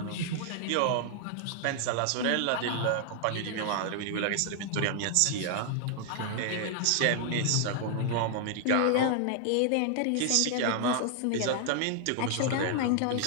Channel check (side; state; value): both; different; correlation 0.00